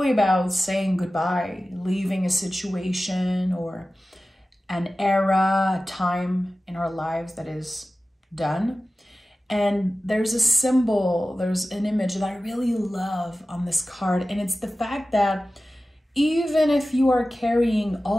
about saying goodbye, leaving a situation or an era, a time in our lives that is done. And there's a symbol, there's an image that I really love on this card. And it's the fact that even if you are carrying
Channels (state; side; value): normal; both; correlation 0.95